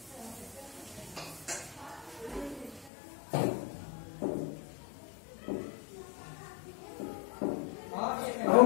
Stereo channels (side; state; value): right; drops out; at 2.9 s